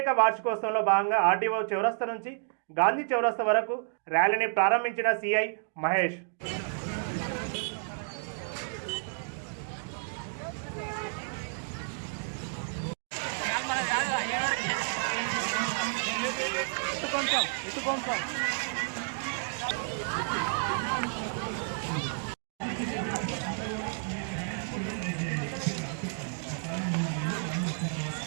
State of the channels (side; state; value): left; silent; digital silence